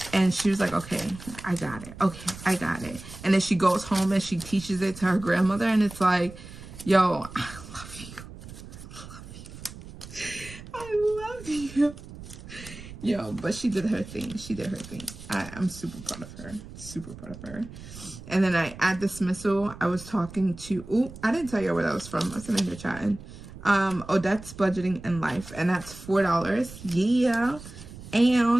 And she was like, okay, I got it. Okay, I got it. And then she goes home and she teaches it to her grandmother. And it's like, yo, I love you. I love you. Yo, but she did her thing. She did her thing. I'm super proud of her. Super proud of her. And then at dismissal, I was talking to, ooh, I didn't tell you where that was from. I was in here chatting. Odette's Budgeting in Life. And that's $4. Yeah.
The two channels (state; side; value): noise; right; rumble, 15 dB below the sound